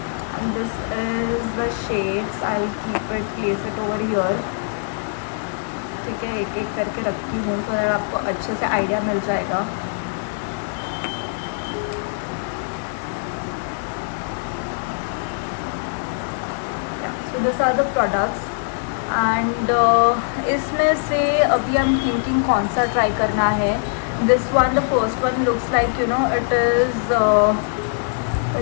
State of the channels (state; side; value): silent; right; digital silence